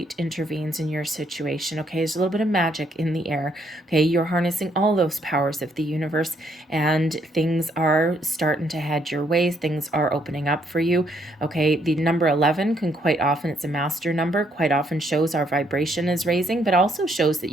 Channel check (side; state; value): both; normal; correlation 0.71